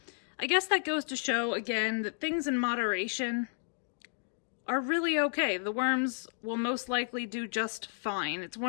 I guess that goes to show, again, that things in moderation are really okay. The worms will most likely do just fine. It's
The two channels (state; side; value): silent; right; digital silence